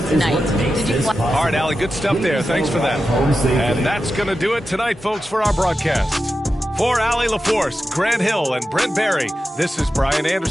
tonight. Did you play? All right, Allie, good stuff there. Thanks for that. And that's going to do it tonight, folks, for our broadcast. For Allie LaForce, Grant Hill, and Brent Barry, this is Brian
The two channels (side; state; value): both; normal; correlation 0.91